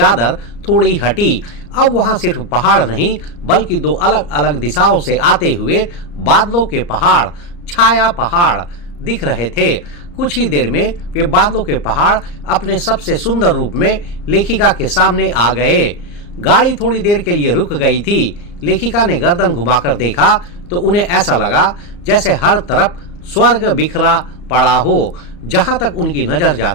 थोड़ी हटी। अब वहां सिर्फ पहाड़ नहीं बल्कि दो अलग अलग दिशाओं से आते हुए बादलों के पहाड़, छाया पहाड़ दिख रहे थे। कुछ ही देर में वे बादलों के पहाड़ अपने सबसे सुंदर रूप में लेखिका के सामने आ गए। गाड़ी थोड़ी देर के लिए रुक गई थी। लेखिका ने गर्दन घुमाकर देखा तो उन्हें ऐसा लगा जैसे हर तरफ स्वर्ग बिखरा पड़ा हो। जहां तक उनकी नजर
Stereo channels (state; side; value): late; right; 34 ms